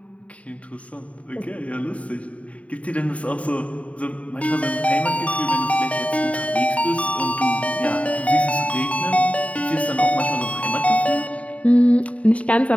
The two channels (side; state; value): right; late; 0.066 ms